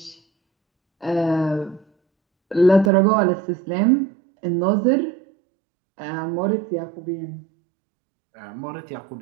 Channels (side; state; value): left; drops out; at 2.9 s